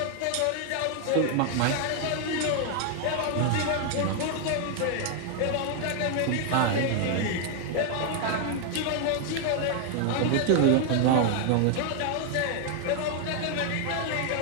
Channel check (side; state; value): both; different; correlation 0.00